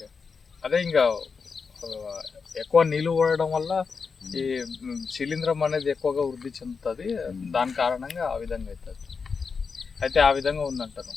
అదే ఇంకా ఎక్కువ నీళ్ళు పడడం వల్ల ఈ శిలీంధ్రం అనేది ఎక్కువగా వృద్ధి చెందుతుంది. దాని కారణంగా ఆ విధంగా అవుతుంది. అయితే ఆ విధంగా ఉందంటారు.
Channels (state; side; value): quieter; right; 5.3 dB